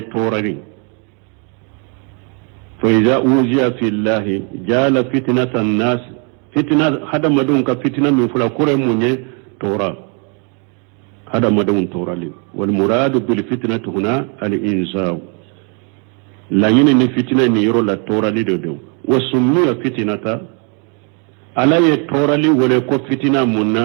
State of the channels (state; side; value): quieter; left; 36.5 dB